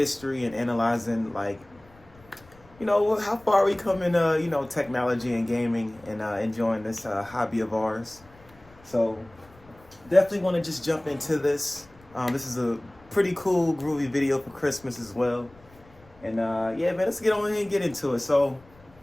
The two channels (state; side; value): noise; left; rumble, 26 dB below the sound